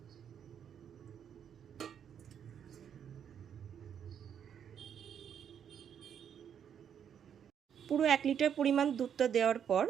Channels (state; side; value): quieter; left; 8.5 dB